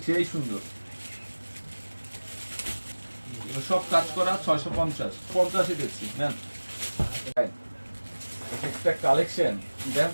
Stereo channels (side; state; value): both; inverted; correlation -1.00